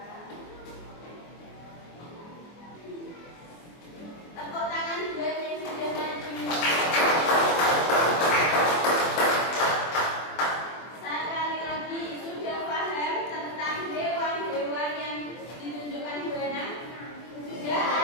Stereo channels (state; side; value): late; right; 24 ms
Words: Tepuk tangan buat yang sudah maju. Sekali lagi, sudah paham tentang hewan-hewan yang ditunjukkan Bu Ana? Sudah